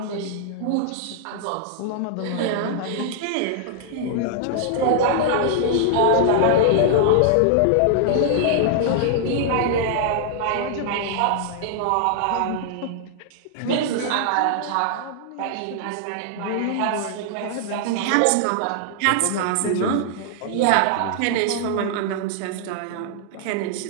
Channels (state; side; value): different; both; correlation -0.01